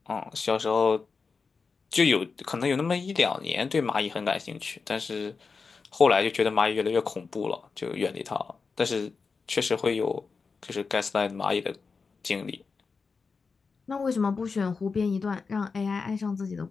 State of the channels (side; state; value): right; quieter; 4.8 dB